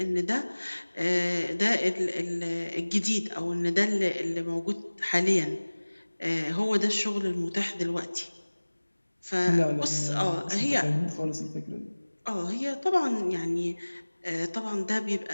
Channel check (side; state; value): both; inverted; correlation -1.00